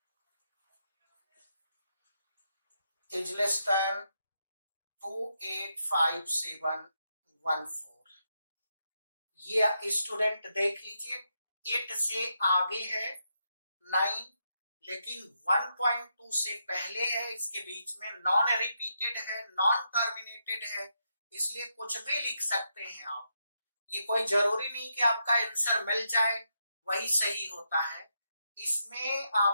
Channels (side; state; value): both; inverted; correlation -0.81